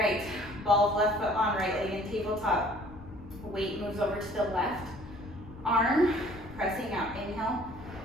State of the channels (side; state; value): left; noise; rumble, 18 dB below the sound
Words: ball of left foot on, right leg in tabletop. Weight moves over to the left arm, pressing out. Inhale,